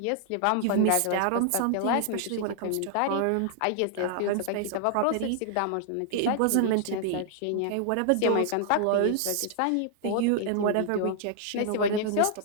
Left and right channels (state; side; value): different; both; correlation 0.00